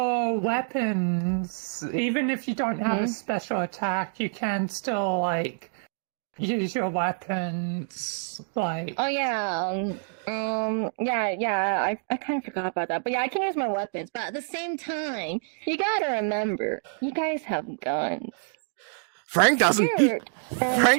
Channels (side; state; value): left; silent; digital silence